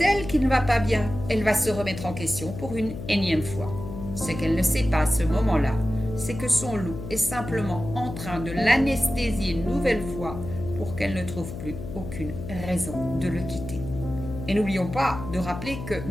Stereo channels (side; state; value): left; noise; hum, 9 dB below the sound